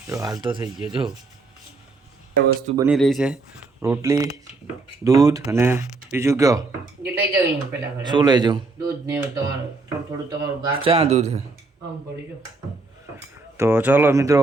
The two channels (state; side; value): quieter; left; 3.6 dB